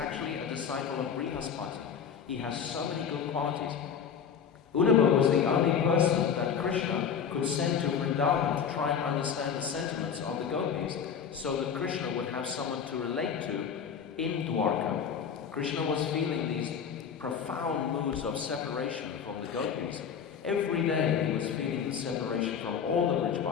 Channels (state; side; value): quieter; right; 7.2 dB